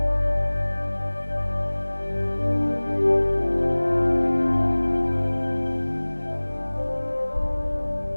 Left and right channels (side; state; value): both; inverted; correlation -1.00